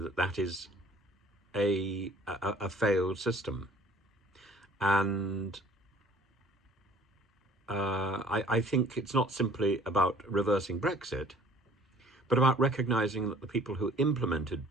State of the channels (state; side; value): normal; both; correlation 0.53